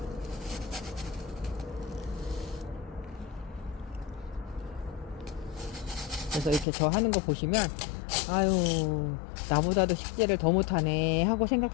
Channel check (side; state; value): right; drops out; at 6.7 s